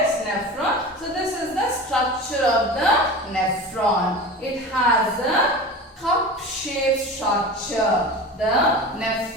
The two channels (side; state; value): both; normal; correlation 0.32